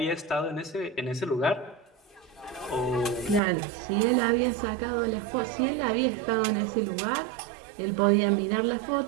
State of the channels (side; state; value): left; drops out; at 3.4 s